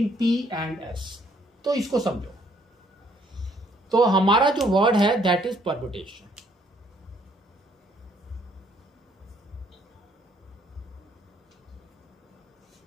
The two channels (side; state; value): both; normal; correlation 0.66